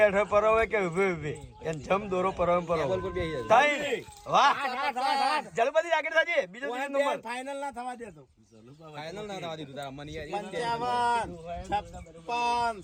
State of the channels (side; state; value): both; identical; correlation 1.00